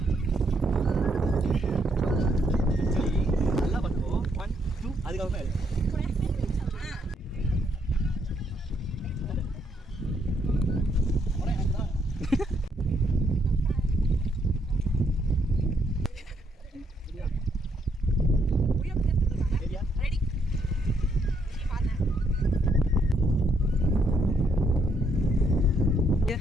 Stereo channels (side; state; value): both; normal; correlation 0.73